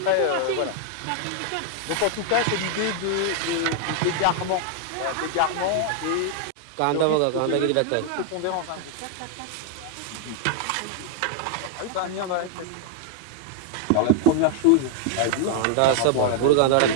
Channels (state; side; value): different; both; correlation 0.00